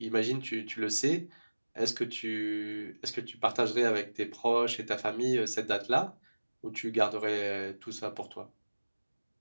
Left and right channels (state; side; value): inverted; both; correlation -1.00